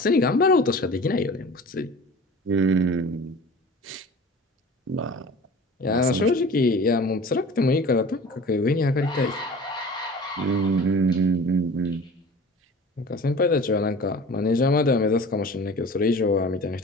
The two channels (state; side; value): normal; both; correlation 0.41